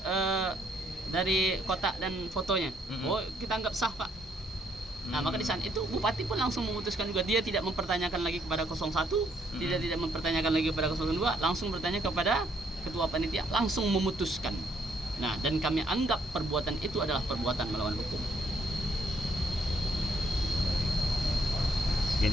dari kotak dan fotonya. Oh, kita anggap sah, Pak. Nah, maka di saat itu Bupati pun langsung memutuskan juga, dia tidak mempertanyakan lagi kepada 01, tidak mempertanyakan lagi kepada 02, langsung bertanya kepada ketua panitia, langsung memutuskan. Nah, dan kami anggap perbuatan itu adalah perbuatan melawan hukum.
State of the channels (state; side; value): normal; both; correlation 0.69